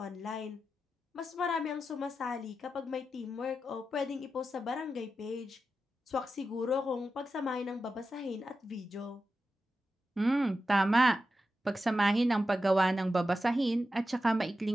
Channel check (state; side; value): normal; both; correlation 0.90